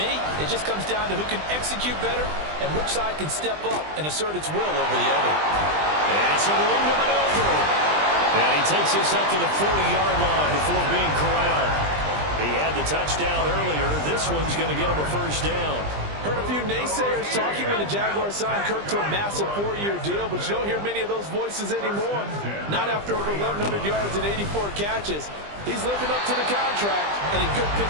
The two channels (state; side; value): late; left; 20 ms